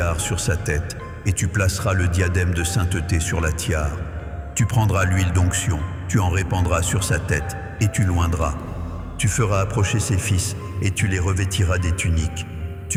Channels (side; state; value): both; identical; correlation 1.00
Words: sur sa tête, et tu placeras le diadème de sainteté sur la tiare. Tu prendras l'huile d'onction, tu en répandras sur sa tête, et tu l'oindras. Tu feras approcher ses fils, et tu les revêtiras des tuniques.